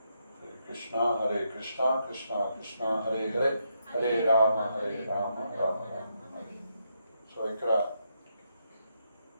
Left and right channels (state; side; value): inverted; both; correlation -0.80